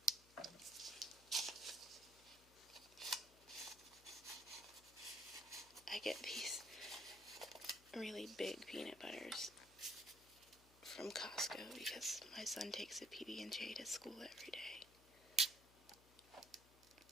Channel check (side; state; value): left; noise; hum, 23 dB below the sound